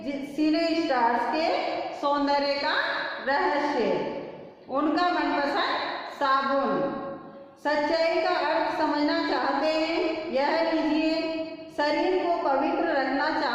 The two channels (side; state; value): both; identical; correlation 1.00